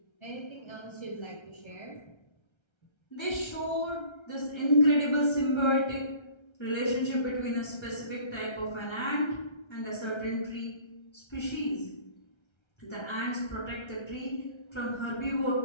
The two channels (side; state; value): right; late; 1.3 ms